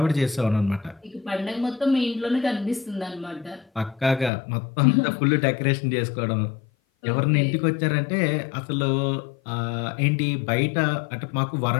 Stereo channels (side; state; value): right; drops out; at 4.3 s